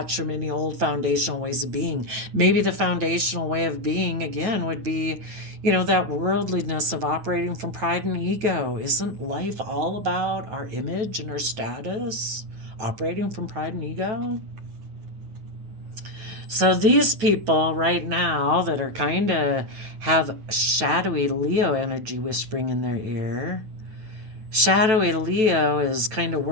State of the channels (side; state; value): left; late; 9.2 ms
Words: from any old foundational ways of being. Maybe the foundational way of being, again, would be, that worldliness of operating from pride and ego. Isn't life all about our image and our status? Operating from pride and ego? So these people right now that are kind of have shadowy Leo energy whispering in their ear, shadowy Leo is kind of